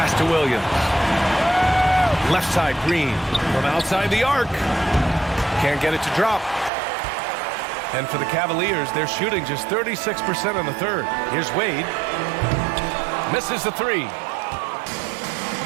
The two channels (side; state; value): left; drops out; at 6.7 s